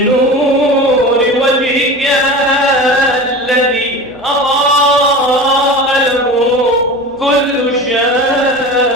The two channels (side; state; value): right; noise; hum, 28 dB below the sound